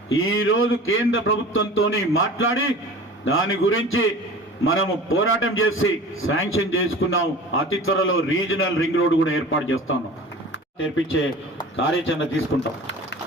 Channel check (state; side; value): normal; both; correlation 0.38